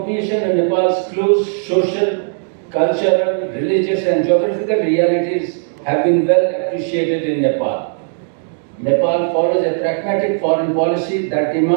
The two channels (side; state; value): left; silent; digital silence